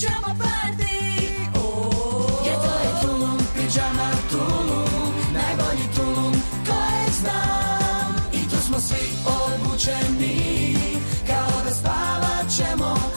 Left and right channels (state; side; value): inverted; both; correlation -1.00